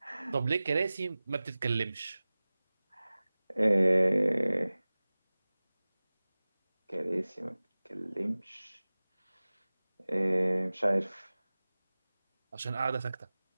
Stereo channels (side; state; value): both; inverted; correlation -0.98